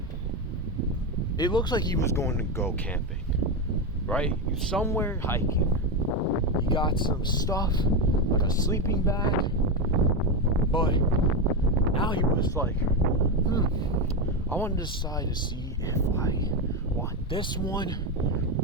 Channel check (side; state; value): both; normal; correlation 0.12